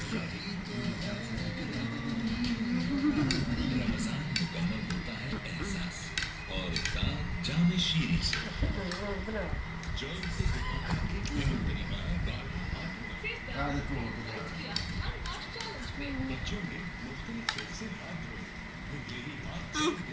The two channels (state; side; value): identical; both; correlation 1.00